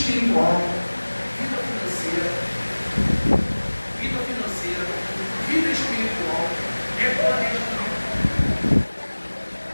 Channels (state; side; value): inverted; both; correlation -1.00